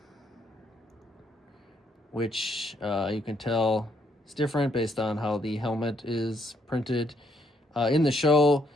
which you can tell is different based on how the helmet is printed. In the show,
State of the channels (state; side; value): normal; both; correlation 0.73